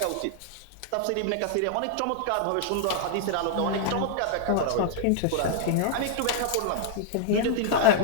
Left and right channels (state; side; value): different; both; correlation -0.01